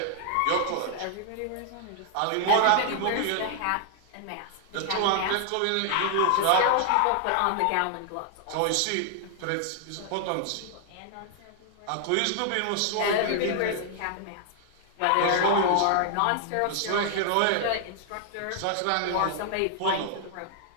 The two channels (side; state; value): both; different; correlation 0.00